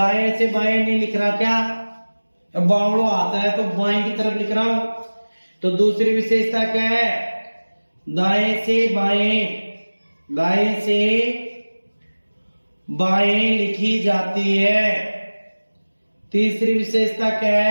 से बाएं नहीं लिख रहा क्या? बावड़ो आता है तो बाएं की तरफ लिख रहा हूं। तो दूसरी विशेषता क्या है? दाएं से बाएं लिखी जाती है। तीसरी विशेषता क्या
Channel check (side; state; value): both; inverted; correlation -1.00